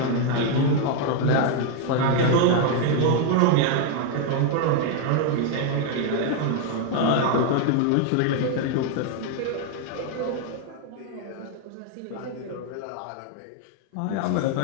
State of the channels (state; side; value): different; both; correlation 0.01